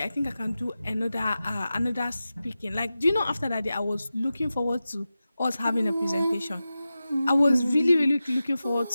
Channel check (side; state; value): both; inverted; correlation -0.94